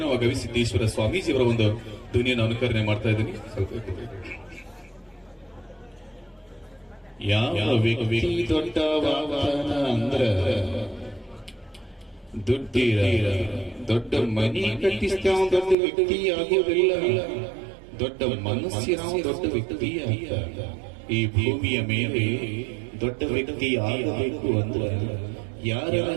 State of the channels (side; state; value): left; drops out; at 15.8 s